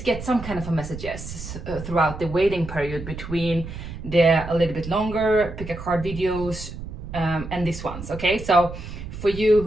get some kind of a messages throughout the waiting period between the a little bit longer pick a card videos and these ones. Okay, so for you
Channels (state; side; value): noise; right; rumble, 10 dB below the sound